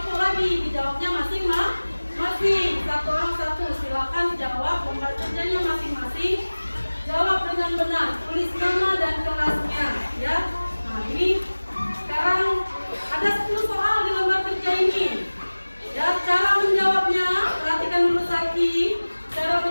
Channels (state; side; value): inverted; both; correlation -1.00